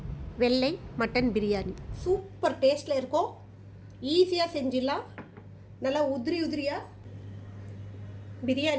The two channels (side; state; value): both; identical; correlation 1.00